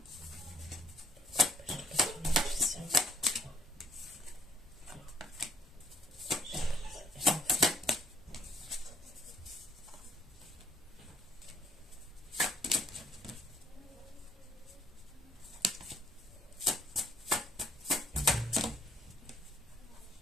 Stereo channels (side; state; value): both; normal; correlation 0.65